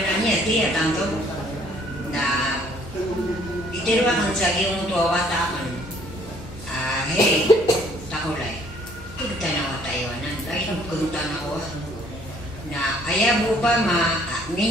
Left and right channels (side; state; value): both; normal; correlation 0.60